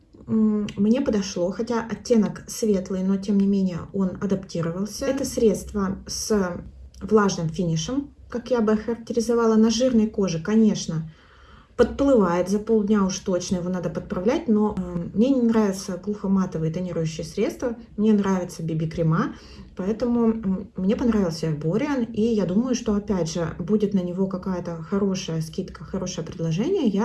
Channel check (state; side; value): identical; both; correlation 1.00